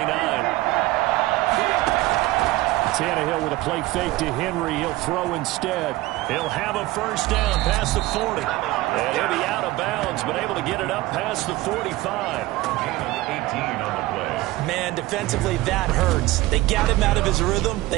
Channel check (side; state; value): left; quieter; 18.5 dB